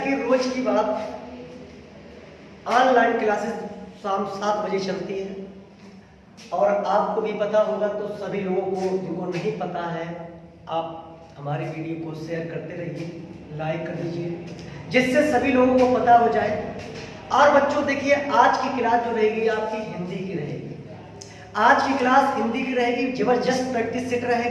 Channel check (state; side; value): identical; both; correlation 1.00